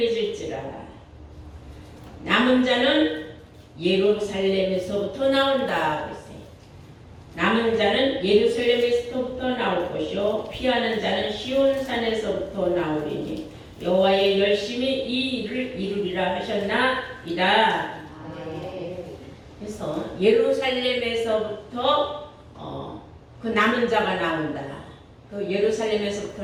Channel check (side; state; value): both; identical; correlation 1.00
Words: 남은 자는 예루살렘에서부터 나온다. 그랬어요. 남은 자는 예루살렘에서부터 나올 것이요 피하는 자는 시온산에서부터 나오리니 여호와의 열심히 이 일을 이루리라 하셨나이다. 그래서 예루살렘에서부터 그 남은 자가 나온다. 그